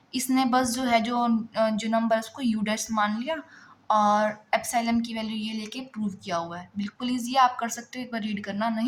इसने बस जो है जो नंबर है उसको यू डैश मान लिया और एप्सिलॉन की वैल्यू ये लेके प्रूव किया हुआ है। बिल्कुल ईजी, आप कर सकते हो, एक बार रीड करना,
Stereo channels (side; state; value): both; identical; correlation 1.00